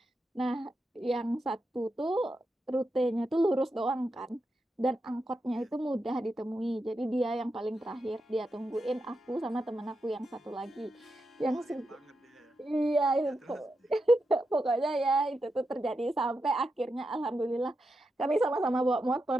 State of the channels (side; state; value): both; normal; correlation 0.87